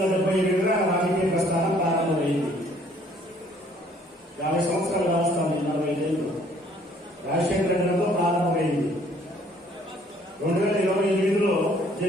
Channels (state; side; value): normal; both; correlation 0.60